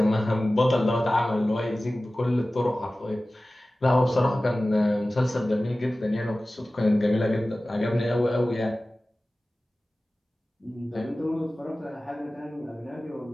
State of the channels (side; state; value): both; normal; correlation 0.96